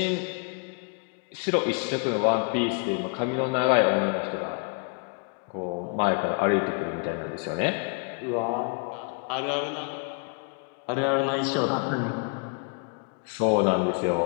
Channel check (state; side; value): quieter; right; 35.4 dB